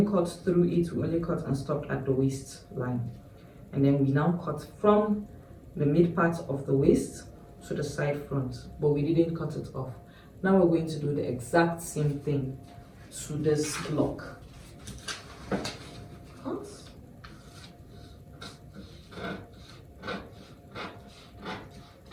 cut through it, we only cut and stopped at the waist line. And then we now cut from the mid part of the waist to the side front, but we didn't cut it off. Now we're going to do the exact same thing to this block.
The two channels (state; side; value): identical; both; correlation 1.00